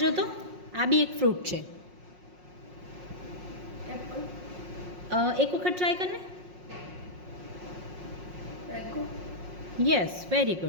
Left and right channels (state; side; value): late; left; 5.5 ms